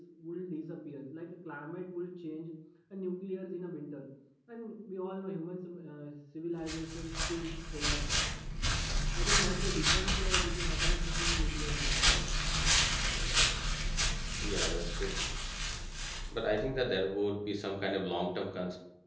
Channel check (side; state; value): both; identical; correlation 1.00